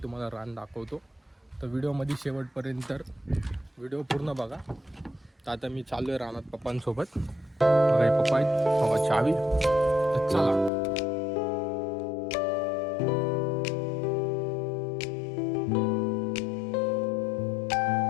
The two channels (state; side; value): drops out; right; at 10.7 s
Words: तुम्हाला रान दाखवतो. तर व्हिडिओमध्ये शेवटपर्यंत व्हिडिओ पूर्ण बघा. तर आता मी चाललो आहे रानात पप्पांसोबत. बघा पप्पा आहेत, बघा चावी. तर चला.